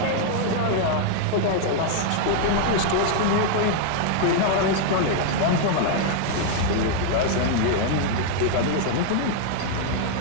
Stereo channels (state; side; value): different; both; correlation 0.00